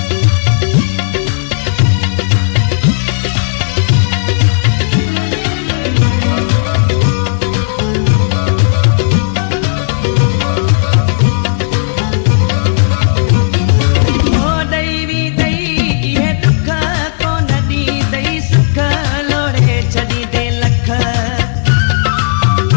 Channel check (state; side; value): silent; right; digital silence